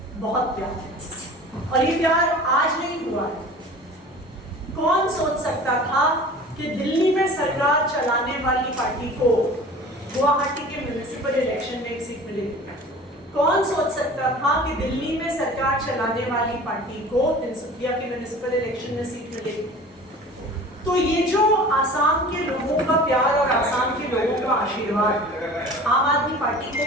बहुत प्यार है और ये प्यार आज नहीं हुआ है। कौन सोच सकता था कि दिल्ली में सरकार चलाने वाली पार्टी को गुवाहाटी के म्युनिसिपल इलेक्शन में एक सीट मिलेगी? कौन सोच सकता था कि दिल्ली में सरकार चलाने वाली पार्टी को तिनसुकिया के म्युनिसिपल इलेक्शन में सीट मिलेगी? तो ये जो आसाम के लोगों का प्यार और आसाम के लोगों का आशीर्वाद आम आदमी पार्टी को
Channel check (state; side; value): normal; both; correlation 0.42